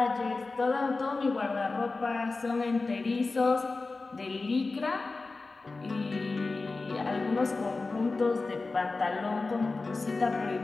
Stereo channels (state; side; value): quieter; right; 3.7 dB